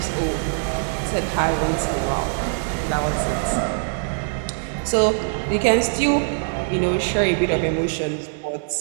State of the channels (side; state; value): left; silent; digital silence